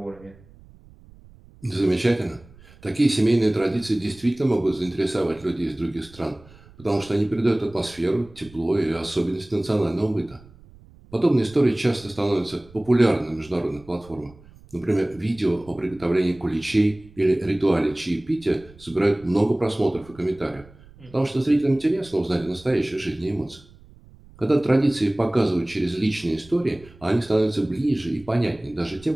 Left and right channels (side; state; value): right; noise; rumble, 24 dB below the sound